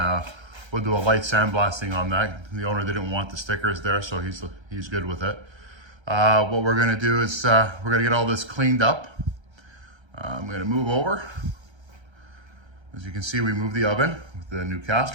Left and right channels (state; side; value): late; left; 1.3 ms